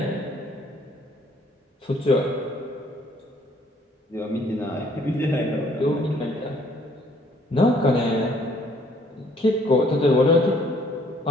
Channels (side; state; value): both; normal; correlation 0.62